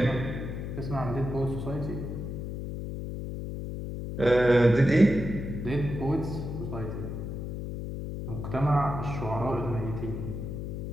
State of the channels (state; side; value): noise; left; hum, 5 dB below the sound